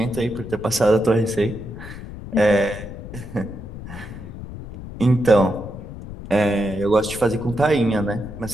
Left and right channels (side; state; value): left; noise; rumble, 12 dB below the sound